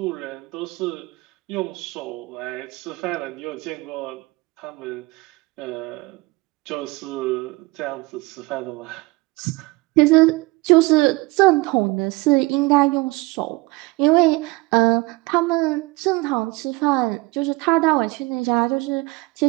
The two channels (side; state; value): left; quieter; 22.9 dB